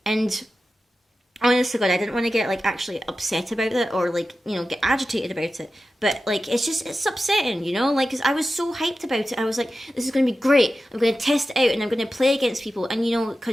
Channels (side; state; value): both; normal; correlation 0.93